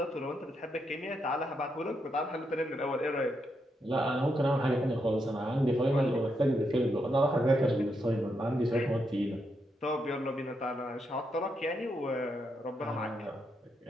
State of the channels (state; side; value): normal; both; correlation 0.81